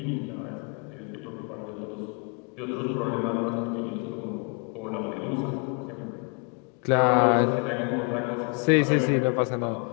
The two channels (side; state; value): right; quieter; 35.7 dB